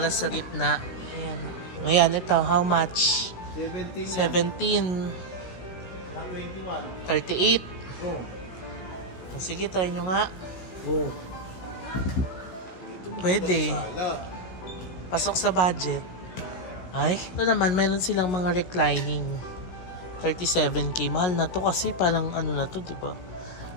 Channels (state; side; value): late; right; 16 ms